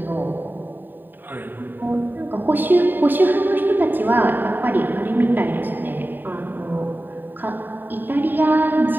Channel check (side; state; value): left; late; 0.092 ms